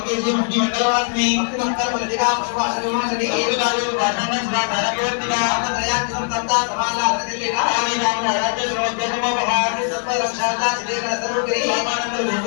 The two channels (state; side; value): silent; right; 55 dB below the other